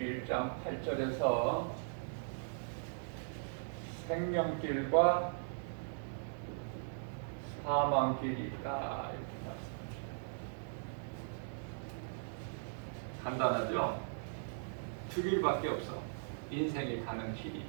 8절에서 생명길과 사망길이 있다 이렇게 말씀하셔요. 간단하죠? 두 길밖에 없어. 인생이 가는 길이.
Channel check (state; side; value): silent; left; 52 dB below the other